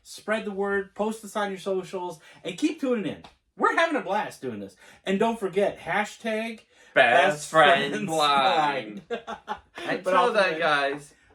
Spread the word, post us on your socials, and keep tuning in. We're having a blast doing this. And don't forget, hashtag Best friend blind. Until then, guys,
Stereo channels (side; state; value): both; identical; correlation 1.00